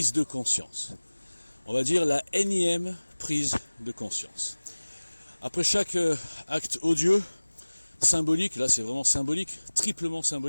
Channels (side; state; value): both; inverted; correlation -1.00